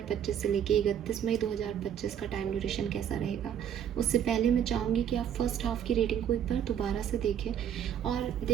से लेके 31 मई 2025 का टाइम ड्यूरेशन कैसा रहेगा। उससे पहले मैं चाहूँगी कि आप फर्स्ट हाफ की रेटिंग को एक बार दोबारा से देखें और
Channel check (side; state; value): left; quieter; 9.1 dB